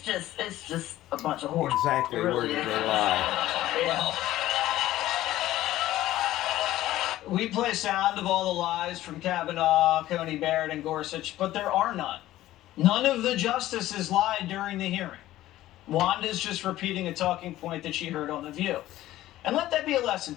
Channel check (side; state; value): right; quieter; 14.9 dB